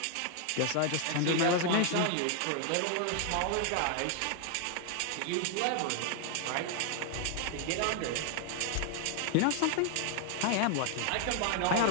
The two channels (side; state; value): both; different; correlation 0.00